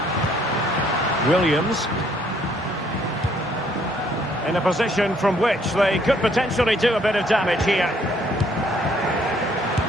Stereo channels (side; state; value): both; normal; correlation 0.65